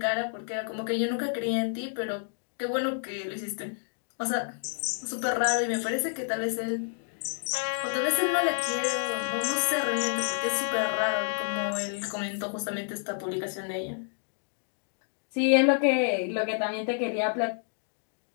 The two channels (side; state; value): right; silent; 58 dB below the other